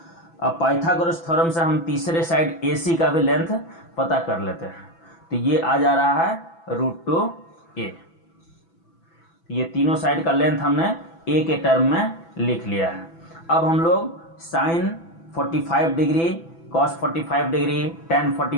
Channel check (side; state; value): right; late; 6.0 ms